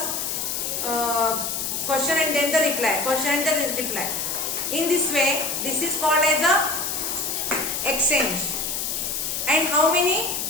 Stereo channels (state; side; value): noise; left; hiss, 2 dB below the sound